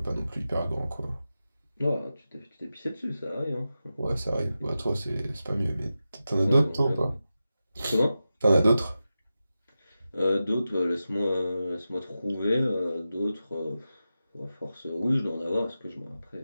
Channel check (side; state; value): both; inverted; correlation -0.92